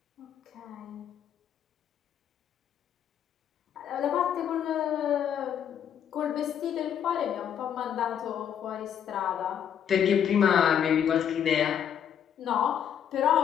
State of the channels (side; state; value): right; quieter; 9.0 dB